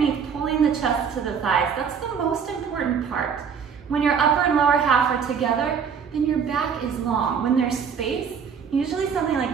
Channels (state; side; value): quieter; left; 6.8 dB